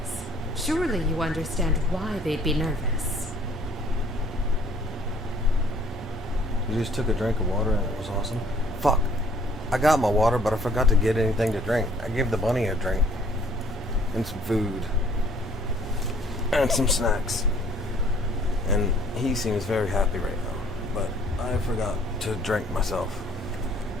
Surely you understand why they'd be nervous. You just took a drink of water and it was awesome. Fuck. I got my water, but I forgot to get anything to drink. I gave the bunny a drink. And some food. And some snacks. And he seems very happy right now. But I forgot to drink myself.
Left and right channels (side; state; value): both; normal; correlation 0.59